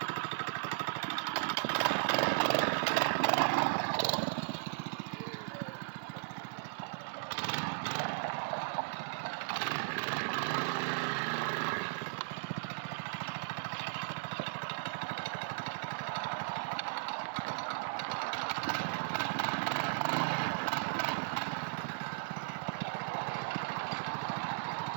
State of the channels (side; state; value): left; silent; digital silence